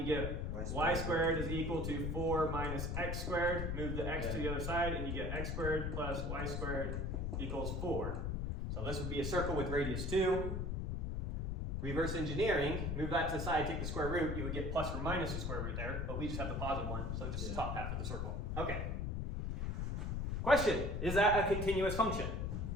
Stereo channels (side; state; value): left; noise; rumble, 1 dB below the sound